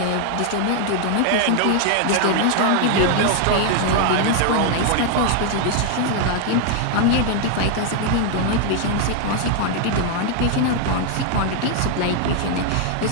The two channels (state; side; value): different; both; correlation 0.00